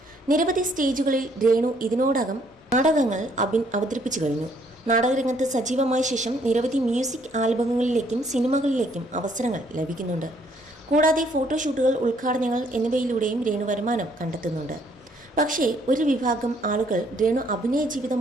നിരവധി സ്റ്റേജുകളിൽ രേണു ഇതിനോടകം നാടകങ്ങൾ അവതരിപ്പിച്ചു കഴിഞ്ഞു. നാടകരംഗത്ത് സജീവമായ ശേഷം നിരവധി മ്യൂസിക് ആൽബങ്ങളിലേക്കും സിനിമകളിലേക്കും അവസരങ്ങൾ ലഭിക്കുന്നുണ്ട്. കൂടാതെ ഫോട്ടോഷൂട്ടുകൾ, ഉദ്ഘാടനങ്ങൾ എന്നിവയിലൂടെയും രേണു വരുമാനം കണ്ടെത്തുന്നുണ്ട്. പക്ഷേ ഒരു വിഭാഗം ആളുകൾ രേണു അഭിനയ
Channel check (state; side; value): normal; both; correlation 0.66